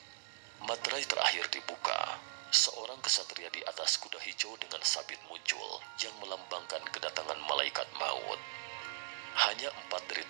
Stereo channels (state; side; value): silent; left; digital silence